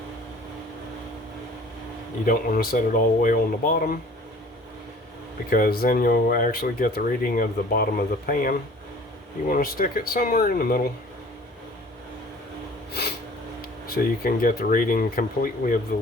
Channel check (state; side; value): normal; both; correlation 0.49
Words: You don't want to set it all the way on the bottom, because then you'll actually get the reading of the bottom of the pan. You want to stick it somewhere in the middle, so you can get the reading completely of the